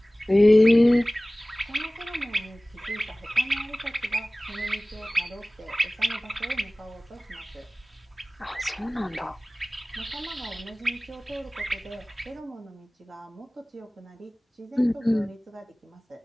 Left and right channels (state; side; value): normal; both; correlation 0.98